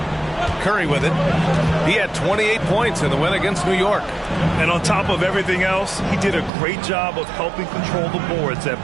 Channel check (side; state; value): left; drops out; at 6.5 s